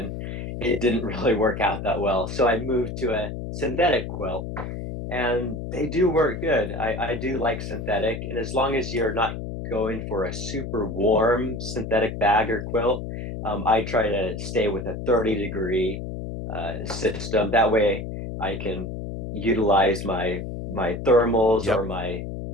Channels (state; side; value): noise; left; hum, 6 dB below the sound